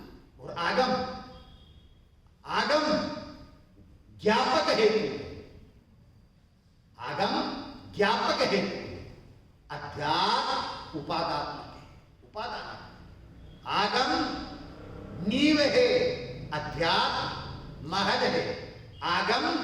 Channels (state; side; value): identical; both; correlation 1.00